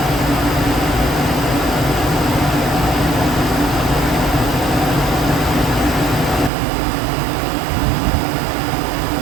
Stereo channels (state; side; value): drops out; left; at 6.5 s